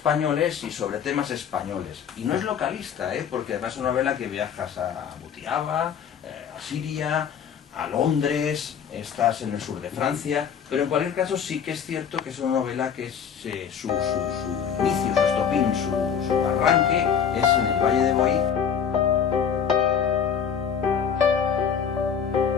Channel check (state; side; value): quieter; right; 7.7 dB